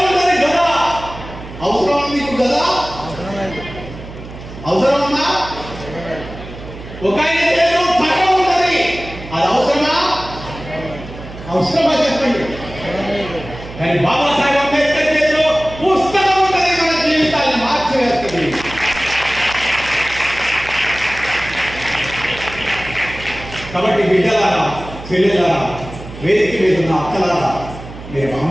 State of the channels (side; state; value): right; noise; hum, 14 dB below the sound